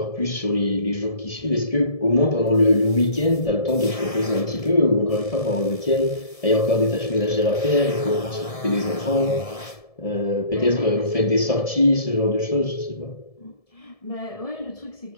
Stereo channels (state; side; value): late; right; 1.7 ms